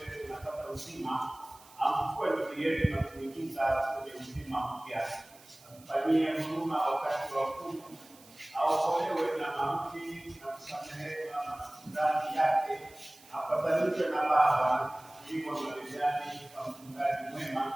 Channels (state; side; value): noise; right; hiss, 24 dB below the sound